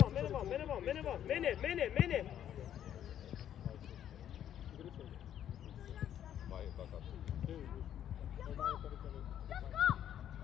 vaan! Mene! Vai takaisin.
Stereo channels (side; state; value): right; quieter; 10.4 dB